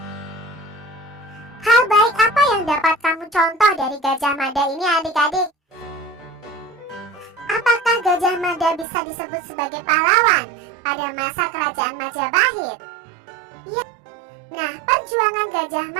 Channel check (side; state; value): left; drops out; at 8.8 s